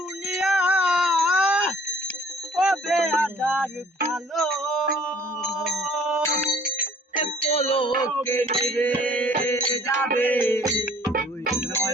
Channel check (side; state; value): both; normal; correlation 0.55